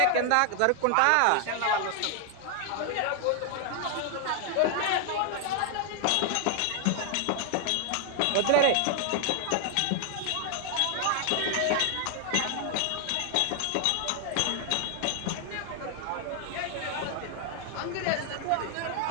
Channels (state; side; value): different; both; correlation 0.00